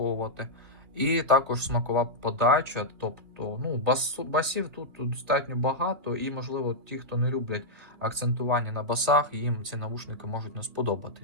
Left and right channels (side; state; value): left; late; 2.7 ms